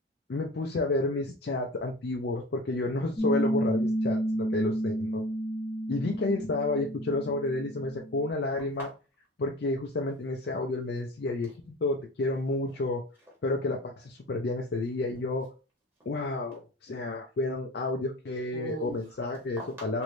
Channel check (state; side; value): normal; both; correlation 0.37